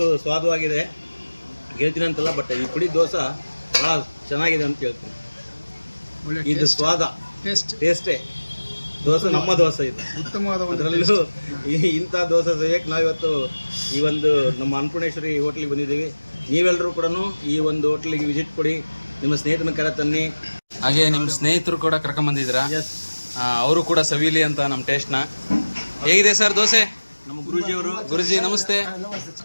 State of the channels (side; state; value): both; inverted; correlation -1.00